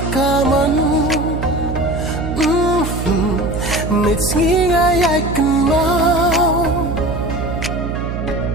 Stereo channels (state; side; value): noise; right; hum, 4 dB below the sound